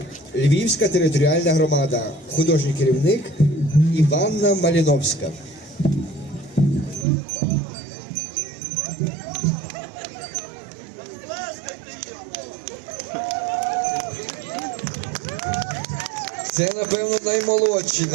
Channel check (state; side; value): drops out; left; at 7.1 s